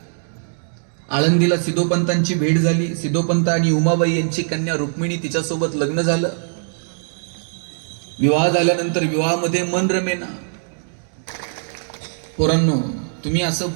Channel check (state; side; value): silent; left; digital silence